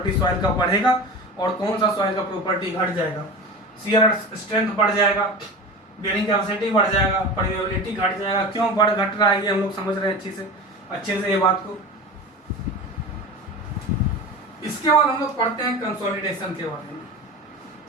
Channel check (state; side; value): normal; both; correlation 0.30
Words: सॉइल का बढ़ेगा और कौन सा सॉइल का प्रॉपर्टी घट जाएगा। शियर स्ट्रेंथ बढ़ जाएगा, बेयरिंग कैपेसिटी बढ़ जाएगा, परमेबिलिटी घट जाएगा। क्यों बढ़ घट रहा है ये हम लोग समझ रहे हैं अच्छे से ये बात को। इसके बाद हम लोग पढ़ते हैं कंसोलिडेशन के बारे में।